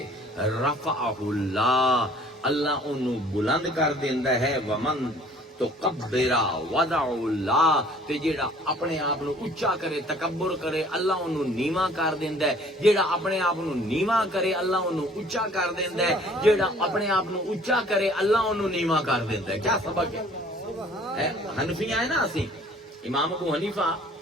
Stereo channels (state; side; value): normal; both; correlation 0.54